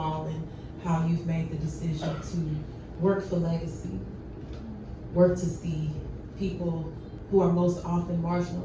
and how you've made the decision to work for legacy, work to see people who are most often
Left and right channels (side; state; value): both; identical; correlation 1.00